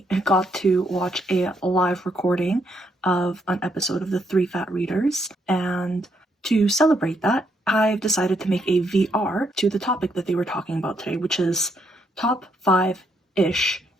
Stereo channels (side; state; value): both; normal; correlation 0.75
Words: got to watch a live recording of an episode of the Three Fat Readers, and to celebrate that, I've decided to make a VR to the topic that they were talking about today, which is top 5-ish